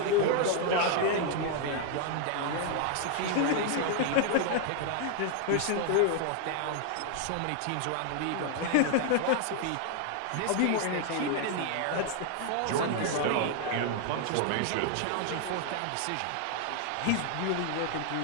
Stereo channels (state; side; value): different; both; correlation 0.00